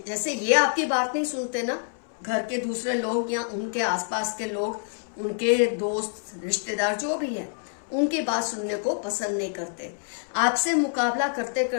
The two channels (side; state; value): right; silent; 60 dB below the other